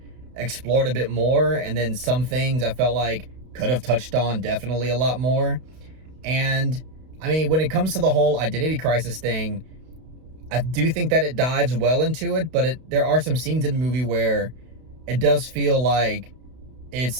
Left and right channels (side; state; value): left; late; 32 ms